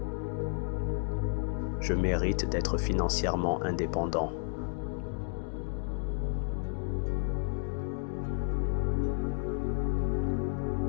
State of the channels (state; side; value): silent; right; 56 dB below the other